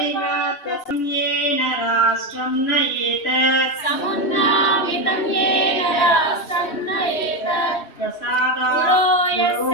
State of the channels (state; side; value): late; right; 3.1 ms